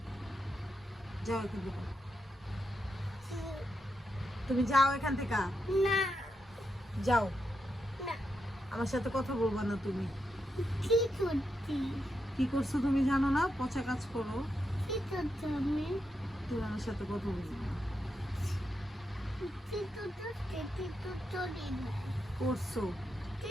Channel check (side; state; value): both; normal; correlation 0.84